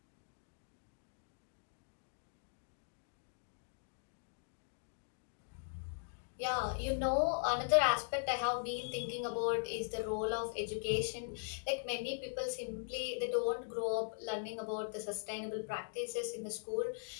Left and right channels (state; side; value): silent; right; digital silence